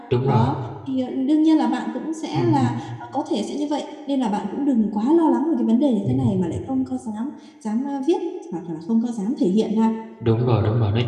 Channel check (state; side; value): identical; both; correlation 1.00